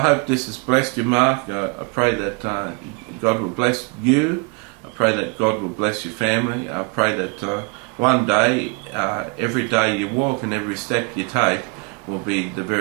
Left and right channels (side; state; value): left; quieter; 31.5 dB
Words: this has blessed you, Mark. I pray that God will bless you. I pray that God will bless your family. I pray that one day, every day you walk and every step you take will be the